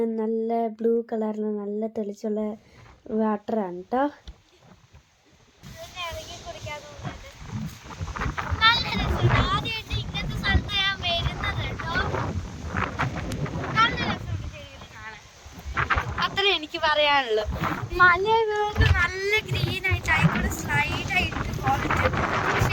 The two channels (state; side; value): identical; both; correlation 1.00